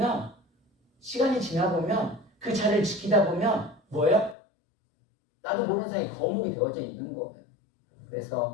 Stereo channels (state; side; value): drops out; right; at 4.4 s